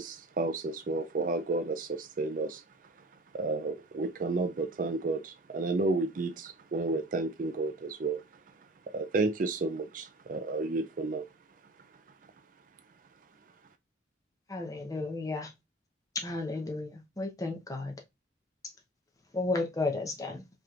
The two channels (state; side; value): normal; both; correlation 0.41